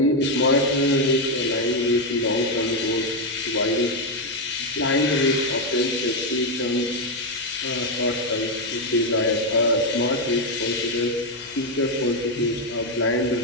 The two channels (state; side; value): noise; left; hum, 30 dB below the sound